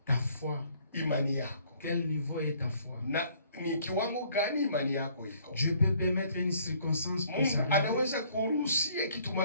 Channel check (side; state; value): both; inverted; correlation -0.61